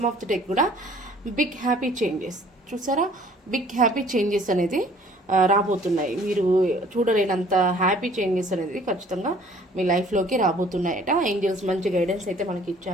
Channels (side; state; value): both; normal; correlation 0.54